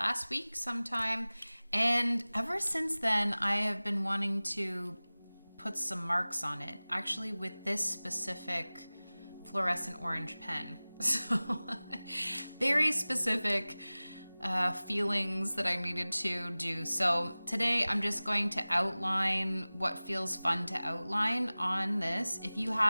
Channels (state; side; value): inverted; both; correlation -0.99